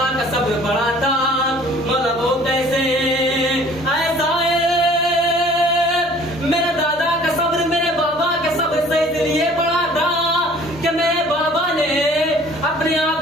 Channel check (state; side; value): normal; both; correlation 0.51